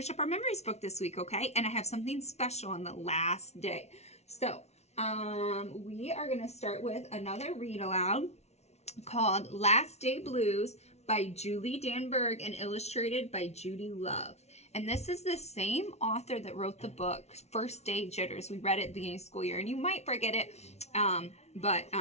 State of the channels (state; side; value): late; right; 0.31 ms